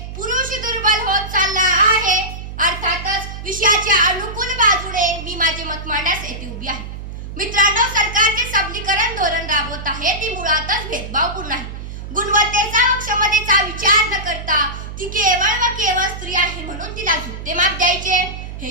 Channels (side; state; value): right; noise; hum, 9 dB below the sound